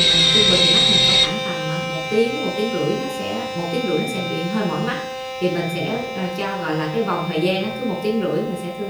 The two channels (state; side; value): identical; both; correlation 1.00